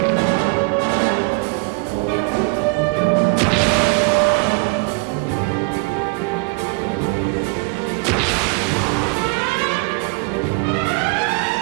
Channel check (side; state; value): left; quieter; 31.2 dB